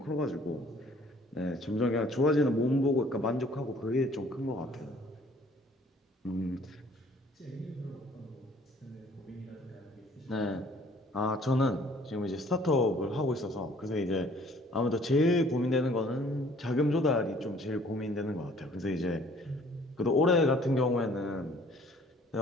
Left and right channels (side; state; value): both; normal; correlation 0.57